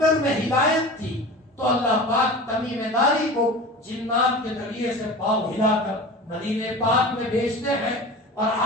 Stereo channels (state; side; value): normal; both; correlation 0.34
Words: میں ہدایت تھی تو اللہ پاک تمیم داری کو جنات کے ذریعے سے پاؤں ہلا کر مدینے پاک میں بھیجتے ہیں اور